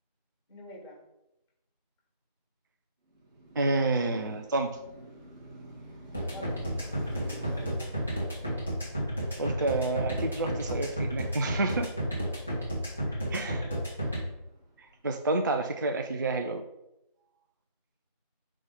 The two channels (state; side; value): inverted; both; correlation -0.61